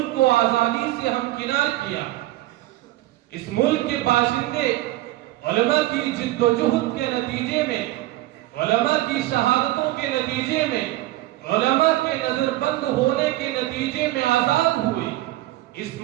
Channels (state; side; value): quieter; left; 16.7 dB